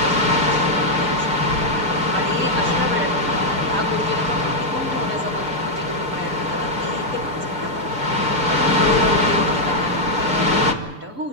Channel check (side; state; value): left; late; 6.8 ms